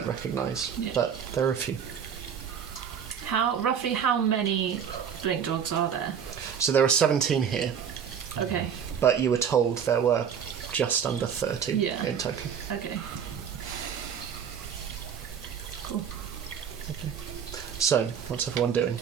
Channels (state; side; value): quieter; left; 7.8 dB